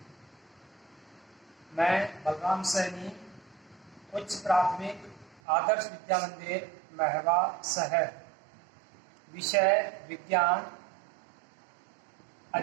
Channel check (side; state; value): left; drops out; at 5.4 s